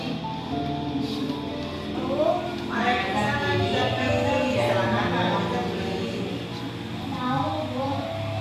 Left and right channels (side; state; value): both; identical; correlation 1.00